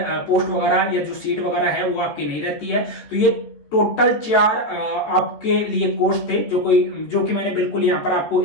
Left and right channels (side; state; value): right; late; 14 ms